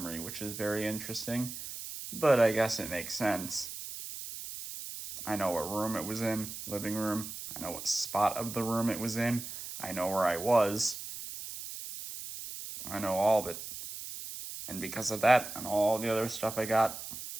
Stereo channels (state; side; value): noise; right; hiss, 9 dB below the sound